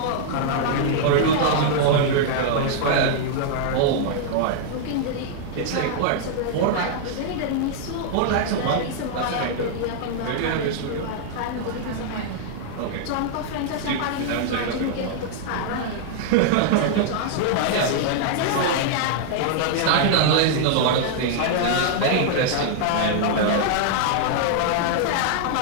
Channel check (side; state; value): both; different; correlation -0.01